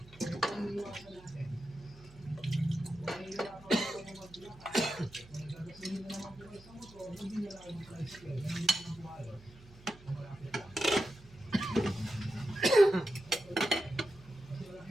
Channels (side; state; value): right; noise; hum, 22 dB below the sound